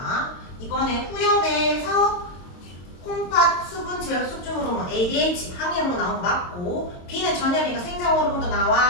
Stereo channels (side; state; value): right; late; 22 ms